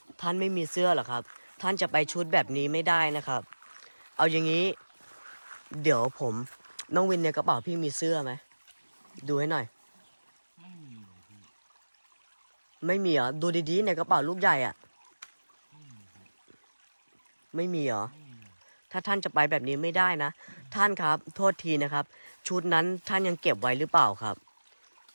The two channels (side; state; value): both; inverted; correlation -1.00